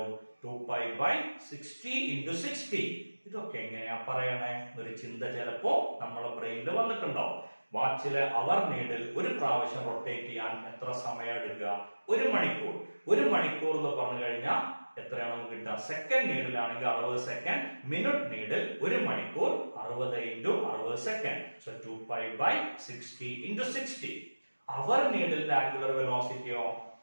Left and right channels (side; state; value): both; inverted; correlation -1.00